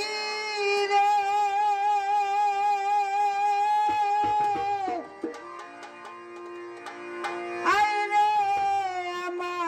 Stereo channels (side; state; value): both; identical; correlation 1.00